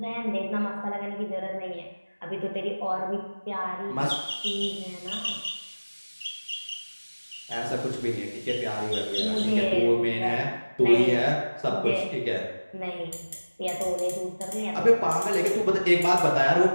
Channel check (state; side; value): inverted; both; correlation -1.00